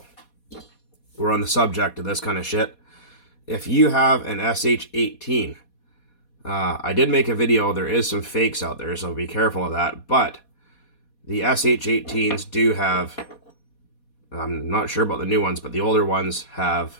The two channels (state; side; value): late; right; 4.2 ms